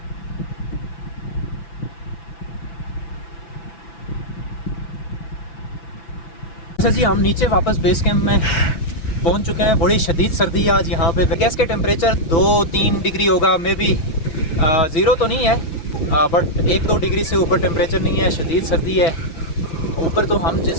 अच्छा जी, हम नीचे वापस बेस कैंप में पहुंच चुके हैं। बड़ी शदीद सर्दी है आज यहाँ पे। गैस के टेम्परेचर 2-3 डिग्री होगा, मे बी ज़ीरो तो नहीं है, बट 1-2 डिग्री से ऊपर टेम्परेचर नहीं है। शदीद सर्दी है। ऊपर तो हम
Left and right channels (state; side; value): late; right; 5.9 ms